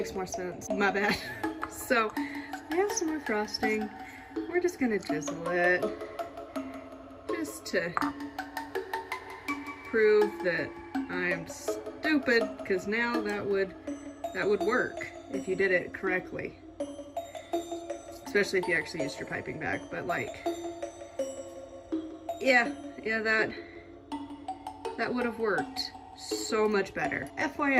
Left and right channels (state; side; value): identical; both; correlation 1.00